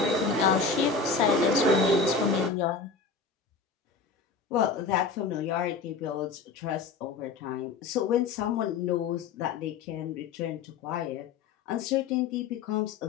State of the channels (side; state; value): right; quieter; 4.8 dB